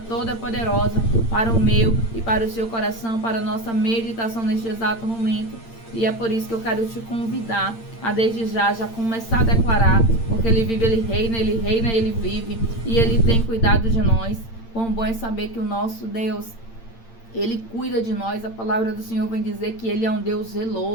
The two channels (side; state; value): right; late; 8.8 ms